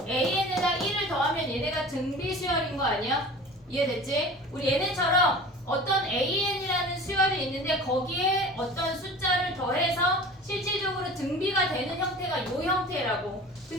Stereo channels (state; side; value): normal; both; correlation 0.39